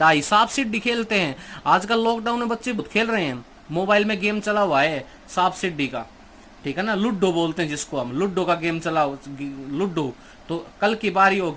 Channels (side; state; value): both; identical; correlation 1.00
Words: सांप सीढ़ी खेलते हैं आजकल, लॉकडाउन में बच्चे बहुत खेल रहे हैं, मोबाइल में गेम चला हुआ है सांप सीढ़ी का, ठीक है ना, लूडो बोलते हैं जिसको हम, लूडो का गेम चला, लूडो। तो कल की बारी